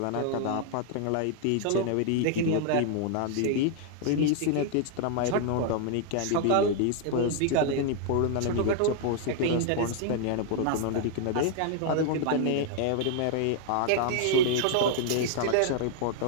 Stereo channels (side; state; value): both; different; correlation 0.00